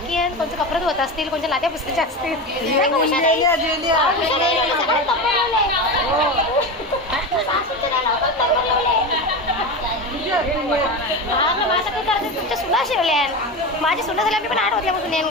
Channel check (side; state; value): both; normal; correlation 0.22